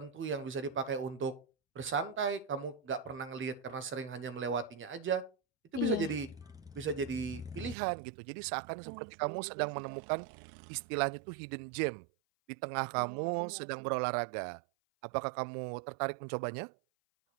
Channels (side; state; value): left; drops out; at 7.8 s